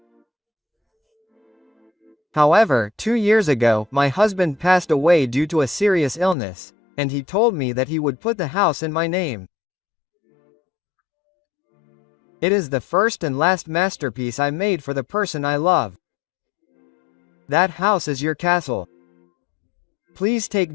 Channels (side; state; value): right; drops out; at 6.4 s